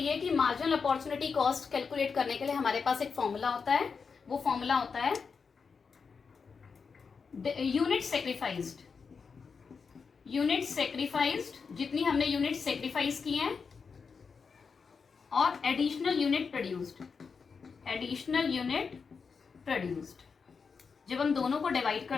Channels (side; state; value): right; quieter; 5.4 dB